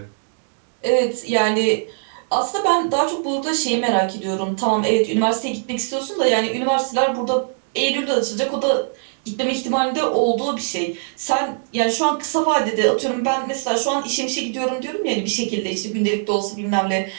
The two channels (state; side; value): silent; left; digital silence